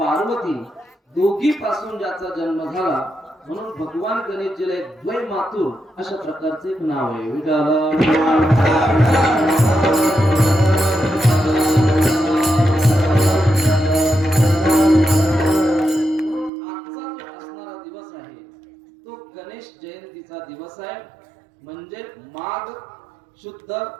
दोघी पासून ज्याचा जन्म झाला म्हणून भगवान गणेशजीला एक द्वै मातुर अशा प्रकारचे एक नाव आहे. गणेश जयंतीचा दिवस आहे म्हणजे माघ शुद्ध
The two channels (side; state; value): left; drops out; at 16.5 s